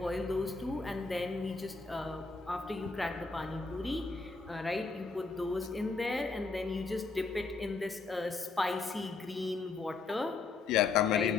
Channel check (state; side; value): quieter; right; 4.2 dB